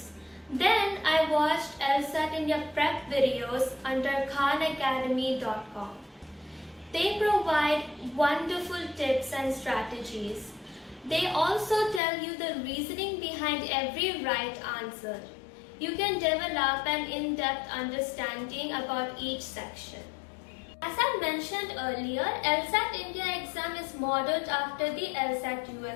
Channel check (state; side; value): drops out; right; at 12.0 s